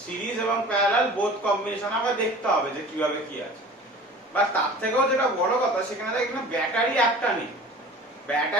সিরিজ এবং প্যারালাল বোথ কম্বিনেশন আবার দেখতে হবে যে কিভাবে কি আছে। বা তার থেকেও যেটা বড় কথা, সেখানে দেখ এখানে ব্যাটারি একটা নেই,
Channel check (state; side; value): normal; both; correlation 0.42